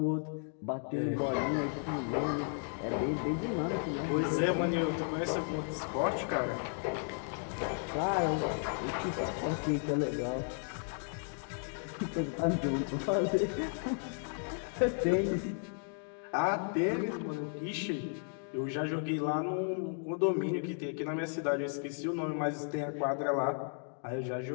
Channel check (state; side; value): silent; right; 55 dB below the other